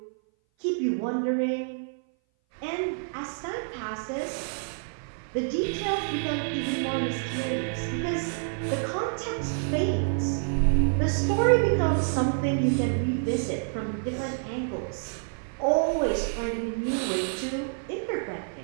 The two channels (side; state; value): left; silent; 57 dB below the other